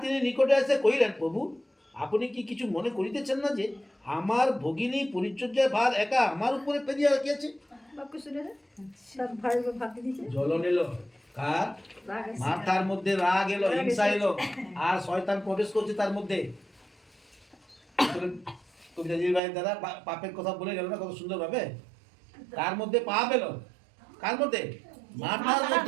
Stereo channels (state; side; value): drops out; left; at 19.4 s